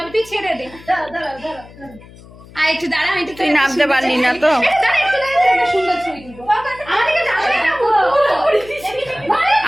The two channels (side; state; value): left; noise; hum, 21 dB below the sound